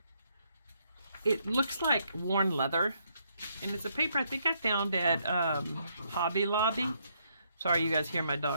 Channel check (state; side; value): inverted; both; correlation -0.73